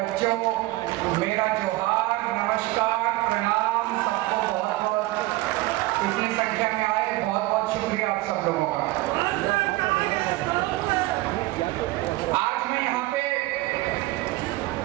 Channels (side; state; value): left; quieter; 19.2 dB